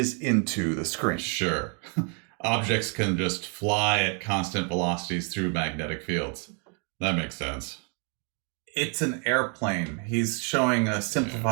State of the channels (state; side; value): quieter; left; 39.0 dB